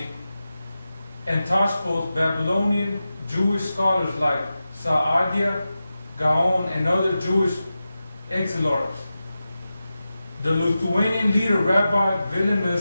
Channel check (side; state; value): both; inverted; correlation -0.92